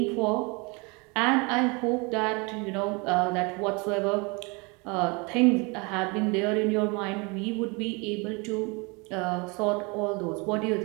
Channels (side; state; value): left; quieter; 29.2 dB